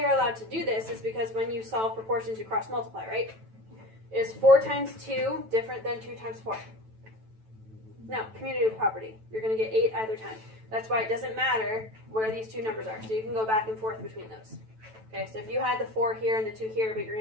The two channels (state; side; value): late; left; 9.1 ms